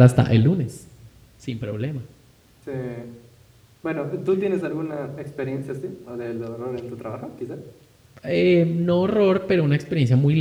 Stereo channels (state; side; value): identical; both; correlation 1.00